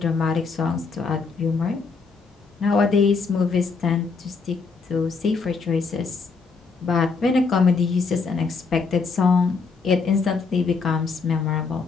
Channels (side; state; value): right; quieter; 4.7 dB